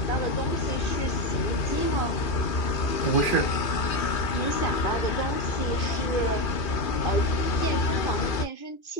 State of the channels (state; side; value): late; right; 2.4 ms